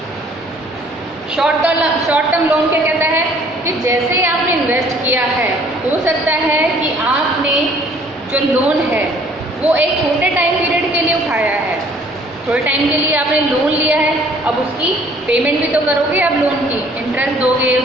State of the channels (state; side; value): normal; both; correlation 0.57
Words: Short term loan क्या कहता है कि जैसे ही आपने इन्वेस्ट किया है, हो सकता है कि आपने जो लोन है वो एक छोटे टाइम पीरियड के लिए उठाया है, थोड़े टाइम के लिए आपने लोन लिया है, अब उसकी पेमेंट भी तो करोगे, आप लोन की इंटरेस्ट दोगे,